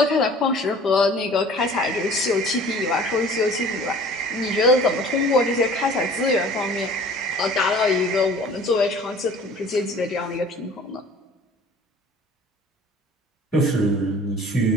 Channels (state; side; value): normal; both; correlation 0.48